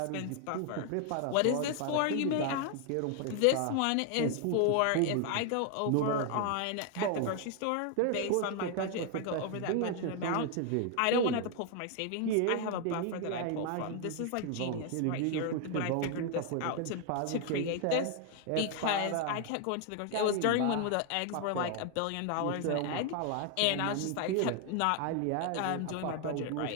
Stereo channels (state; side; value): different; both; correlation 0.00